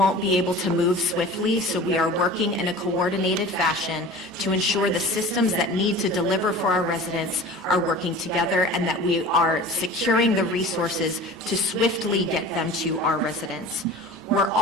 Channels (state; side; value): normal; both; correlation 0.39